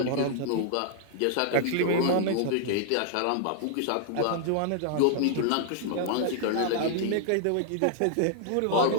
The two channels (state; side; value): different; both; correlation -0.01